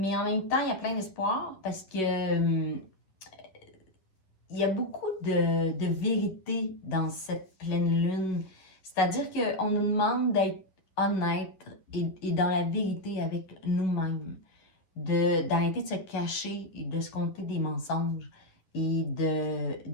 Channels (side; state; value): right; late; 11 ms